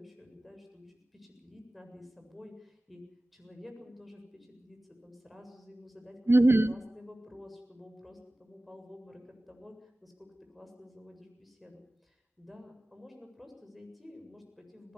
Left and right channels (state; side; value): normal; both; correlation 0.97